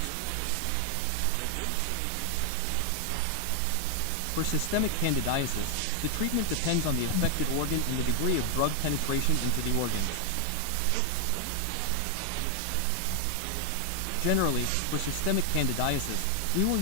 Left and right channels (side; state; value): both; different; correlation 0.00